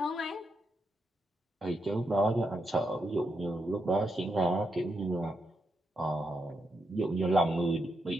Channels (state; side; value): normal; both; correlation 0.83